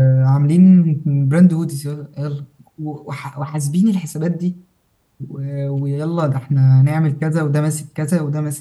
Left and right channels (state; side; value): identical; both; correlation 1.00